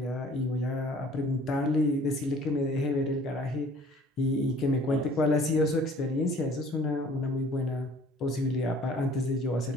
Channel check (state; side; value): normal; both; correlation 0.53